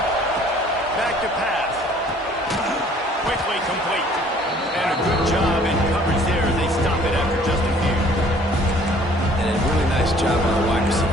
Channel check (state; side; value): normal; both; correlation 0.56